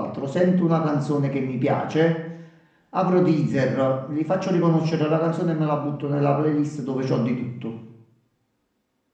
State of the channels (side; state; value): both; identical; correlation 1.00